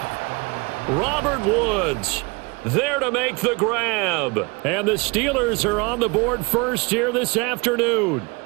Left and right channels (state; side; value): quieter; left; 27.5 dB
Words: Robert Woods there to make the grab. And the Steelers are on the board first here this afternoon.